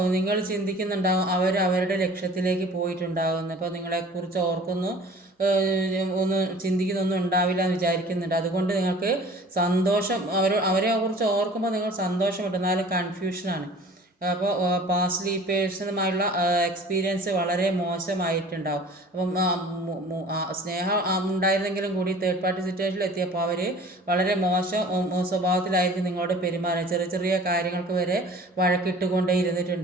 നിങ്ങൾ ചിന്തിക്കുന്നുണ്ടാവും അവരുടെ ലക്ഷ്യത്തിലേക്ക് പോയിട്ടുണ്ടാകുന്നു. അപ്പോൾ നിങ്ങളെക്കുറിച്ച് ചിന്തിക്കുന്നൊന്നും ഉണ്ടാവില്ല എന്ന് വിചാരിക്കുന്നുണ്ട്. അതുകൊണ്ട് നിങ്ങൾക്ക് സന്തോഷം അവരെ കുറിച്ച് ഓർക്കുമ്പോൾ നിങ്ങൾ സന്തോഷമുണ്ട്, എന്നാലും കൺഫ്യൂഷനാണ്. അപ്പോൾ പാസ്റ്റ് പേഴ്സണുമായുള്ള എക്സ്പീരിയൻസ് വളരെ മോശമായിട്ടുണ്ടാവും. അപ്പം സ്നേഹം ഉണ്ടായിരുന്നെങ്കിലും കൂടി തേർഡ് പാർട്ടി സിറ്റുവേഷനിൽ എത്തിയപ്പോൾ അവർ വളരെ മോശം സ്വഭാവത്തിലായിരിക്കും നിങ്ങളോട് പെരുമാറുക. ചെറിയ ചെറിയ കാര്യങ്ങൾക്ക് വരെ വഴക്കിട്ടുകൊണ്ടേ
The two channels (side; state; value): both; normal; correlation 0.46